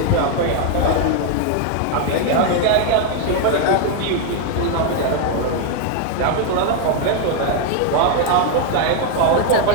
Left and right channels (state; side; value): different; both; correlation 0.00